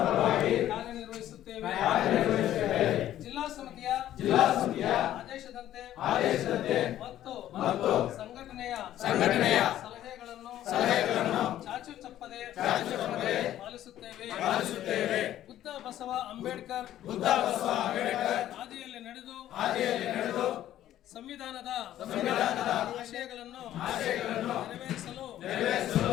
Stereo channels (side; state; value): right; quieter; 12.5 dB